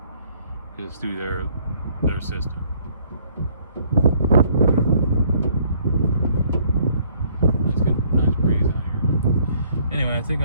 It's through their system. Let's get a nice breeze out here. Anyway, I think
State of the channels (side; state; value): both; inverted; correlation -0.62